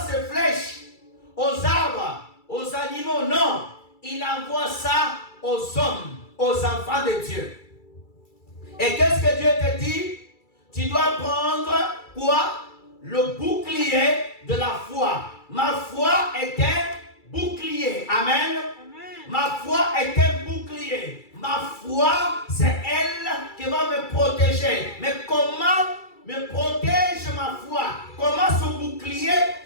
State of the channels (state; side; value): late; right; 2.3 ms